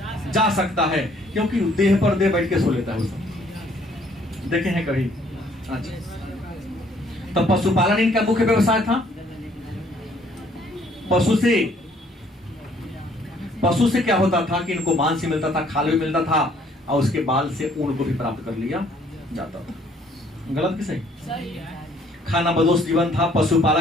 जा सकता है, क्योंकि देह पर देह बैठ के सो लेता है। उसको देखे हैं कभी? अच्छा। तब पशुपालन इनका मुख्य व्यवसाय था। पशु से क्या होता था कि इनको मांस भी मिलता था, खाल भी मिलता था, और उसके बाल से ऊन को भी प्राप्त कर लिया जाता था। गलत कि सही? खाना बदोश जीवन था।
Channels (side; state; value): both; normal; correlation 0.62